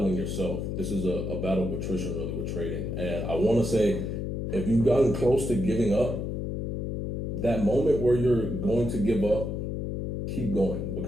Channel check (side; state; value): left; noise; hum, 3 dB below the sound